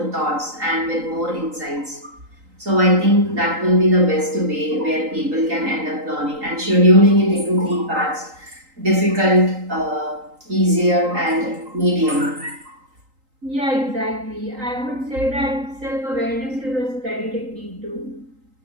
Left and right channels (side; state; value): left; late; 3.8 ms